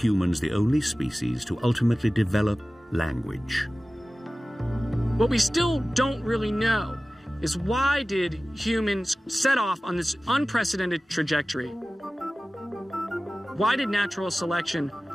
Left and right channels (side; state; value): both; normal; correlation 0.97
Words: the only species to ultimately develop language? What we still don't really know is why did humans set off on this unprecedented trajectory? Why did natural selection